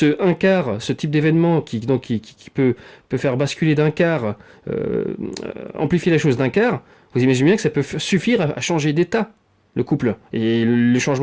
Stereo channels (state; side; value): identical; both; correlation 1.00